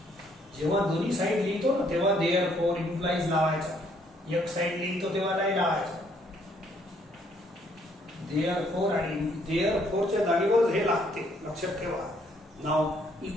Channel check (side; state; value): both; normal; correlation 0.67